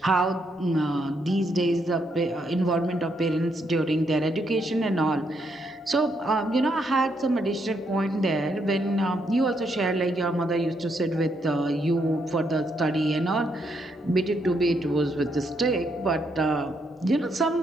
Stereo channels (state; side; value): normal; both; correlation 0.76